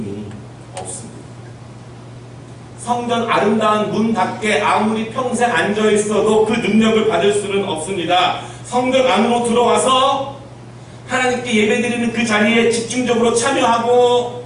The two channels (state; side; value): identical; both; correlation 1.00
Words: 없습니다. 성전 아름다운 문 밖에 아무리 평생 앉아 있어도 그 능력을 받을 수는 없습니다. 성전 안으로 들어와서 하나님께 예배드리는 그 자리에 집중적으로 참여하고